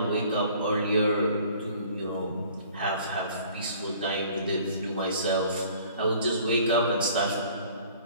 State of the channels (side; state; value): both; inverted; correlation -0.52